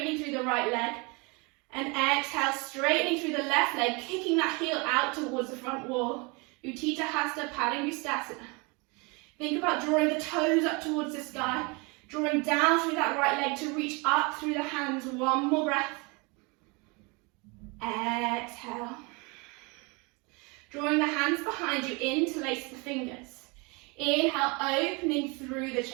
through the right leg. And exhale, straightening through the left leg, kicking that heel out towards the front wall. Utthita Hasta Padangusthasana. Think about drawing the toes up towards the sky, drawing down through that right leg to reach up through the hands. One more breath. Exhale. Drawing the hands behind you, interlace the fingers. Inhale, opening through the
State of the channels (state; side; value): quieter; left; 29.0 dB